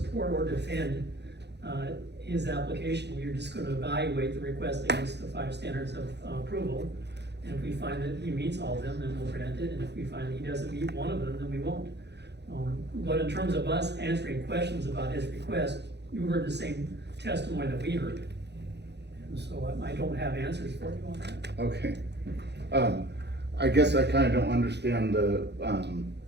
or defend, his application. We're just gonna evaluate the request against the 5 standards of approval. And if we find that he meets all of them, then we'll grant it. And if we find that he doesn't meet one of them, then we won't. But in terms of us answering questions about his request, you heard the same testimony that we heard. And so I don't have answers for you on that. Okay. I guess I kinda don't understand the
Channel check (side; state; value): left; late; 0.50 ms